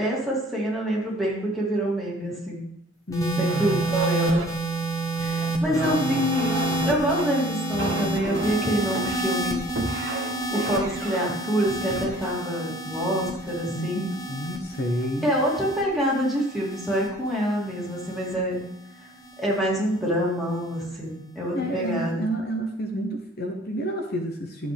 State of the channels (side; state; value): both; normal; correlation 0.52